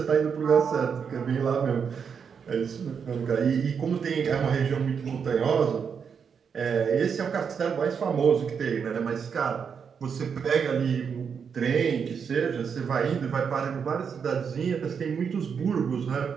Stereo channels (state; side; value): quieter; left; 6.6 dB